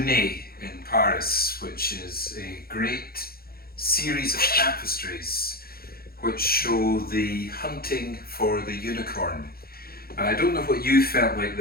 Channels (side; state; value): right; late; 0.44 ms